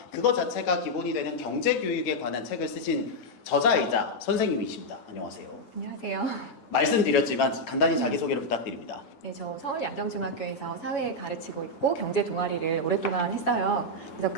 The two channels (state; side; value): late; right; 8.6 ms